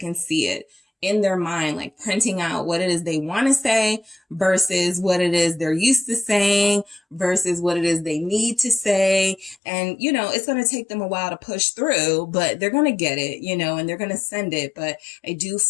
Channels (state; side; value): drops out; right; at 9.6 s